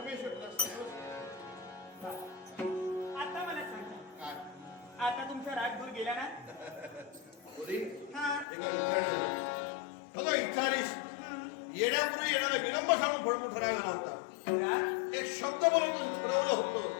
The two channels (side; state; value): right; drops out; at 8.5 s